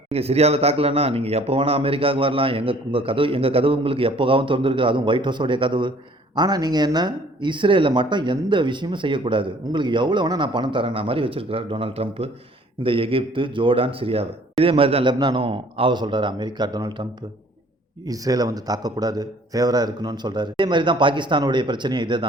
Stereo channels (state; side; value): normal; both; correlation 0.55